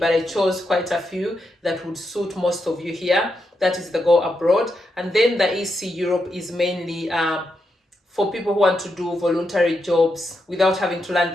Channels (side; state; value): both; normal; correlation 0.84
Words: I chose quite a few that would suit most of you here. That is the Go Abroad. And then the EC Europe is mainly for people who want to do voluntary jobs without having to learn